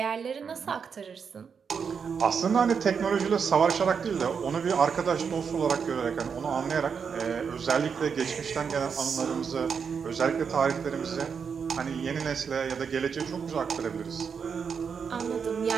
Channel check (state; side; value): quieter; left; 6.3 dB